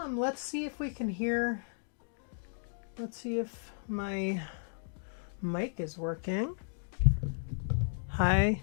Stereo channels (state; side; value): silent; right; digital silence